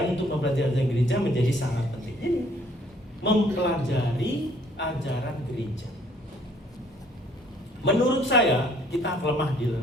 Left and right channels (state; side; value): normal; both; correlation 0.61